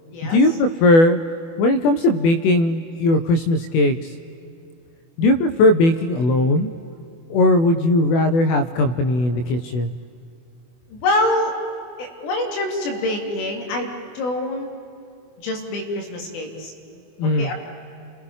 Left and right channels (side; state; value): right; late; 24 ms